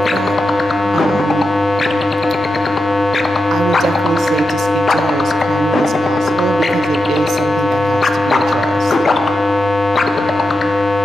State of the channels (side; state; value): both; normal; correlation 0.88